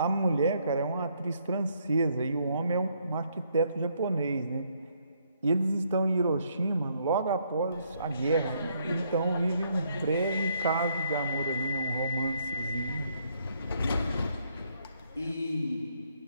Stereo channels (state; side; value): inverted; both; correlation -0.71